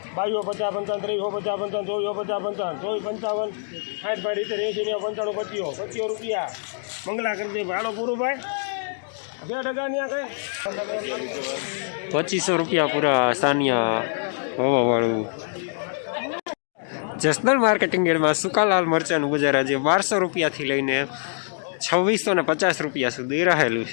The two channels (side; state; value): right; silent; digital silence